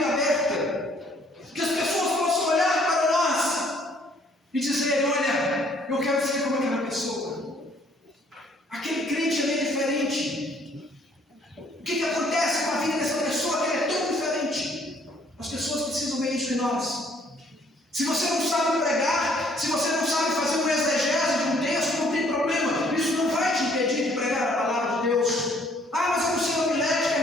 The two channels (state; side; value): normal; both; correlation 0.62